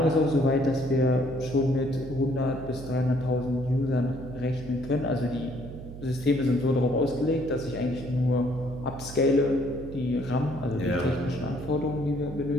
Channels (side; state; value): right; noise; hum, 12 dB below the sound